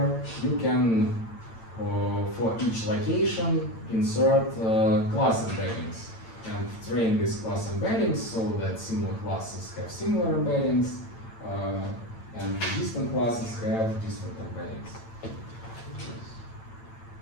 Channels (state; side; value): late; right; 8.9 ms